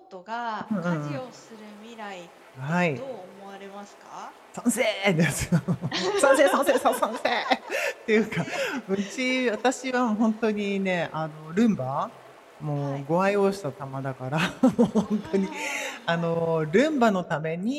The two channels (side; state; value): both; identical; correlation 1.00